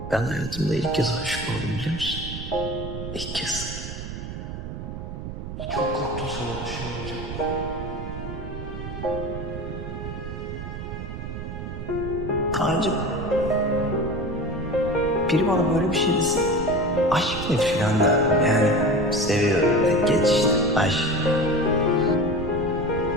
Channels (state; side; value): noise; right; rumble, 7 dB below the sound